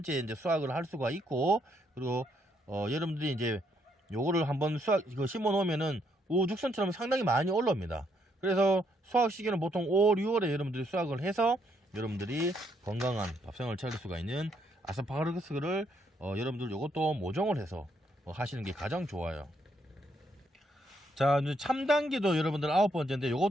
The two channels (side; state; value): both; normal; correlation 0.73